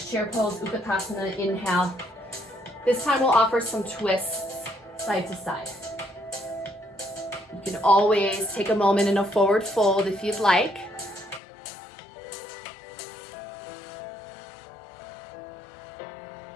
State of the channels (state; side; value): drops out; right; at 11.4 s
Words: chair pose, Utkatasana, inhale. This time we'll offer some twists side to side. You can always take a moment in a forward fold if you'd like.